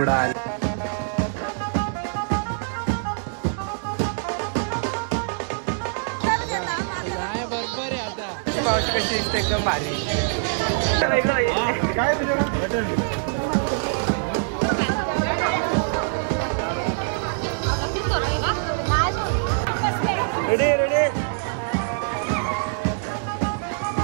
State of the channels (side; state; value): left; silent; digital silence